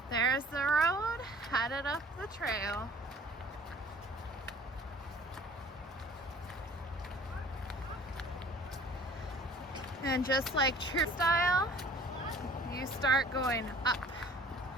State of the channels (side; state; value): both; normal; correlation 0.51